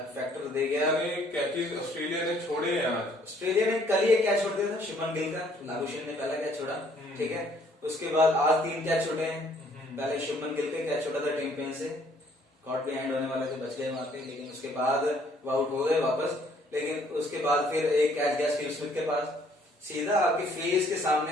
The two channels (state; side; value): normal; both; correlation 0.62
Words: फैक्टर दे गया। कैचेस ऑस्ट्रेलिया ने छोड़े हैं आज। ऑस्ट्रेलिया ने कल ही एक कैच छोड़ दिया था शुभमन गिल का, लाबुशेन ने पहला कैच छोड़ा, ठीक है, उसके बाद आज 3 कैच छोड़े हैं। पहले शुभमन गिल का कैच छोड़ा था टिम पेन से, कॉट बिहाइंड होने वाला से बच गए वहां पे, लेकिन उसके बाद वो आउट हो गए वापस। लेकिन उसके बाद फिर एक कैच गया स्टीव स्मिथ के पास, सीधा आपके फेस के